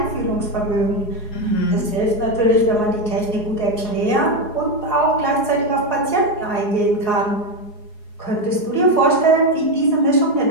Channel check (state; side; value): late; right; 4.8 ms